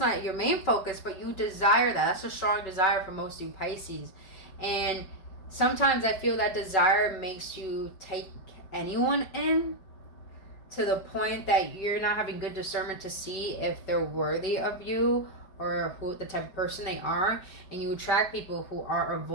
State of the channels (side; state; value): right; late; 5.3 ms